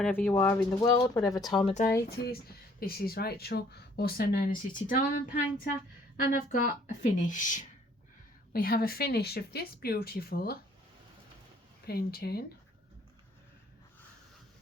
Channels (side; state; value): both; normal; correlation 0.60